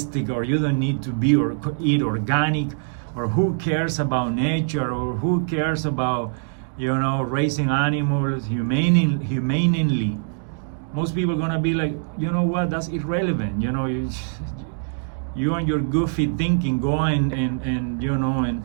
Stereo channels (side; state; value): left; silent; digital silence